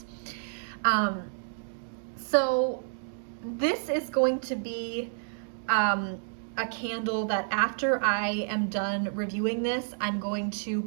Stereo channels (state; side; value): silent; left; digital silence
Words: So this is going to be a candle that after I am done reviewing this, I'm going to